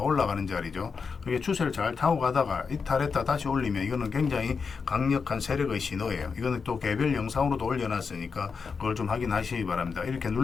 자리죠. 그게 추세를 잘 타고 가다가 이탈했다 다시 올리면 이거는 굉장히 강력한 세력의 신호예요. 이거는 또 개별 영상으로도 올려놨으니까 그걸 좀 확인하시기 바랍니다. 이렇게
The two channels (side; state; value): right; quieter; 5.4 dB